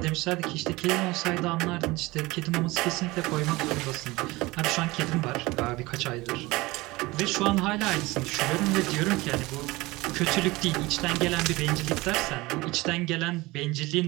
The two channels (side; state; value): left; quieter; 21.2 dB